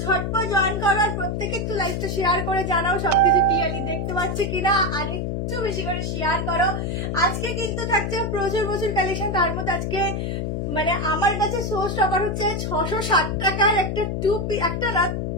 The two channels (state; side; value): noise; left; hum, 2 dB below the sound